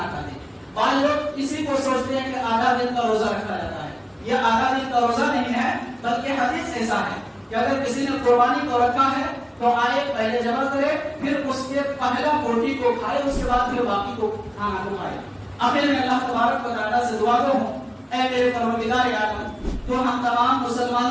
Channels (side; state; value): both; identical; correlation 1.00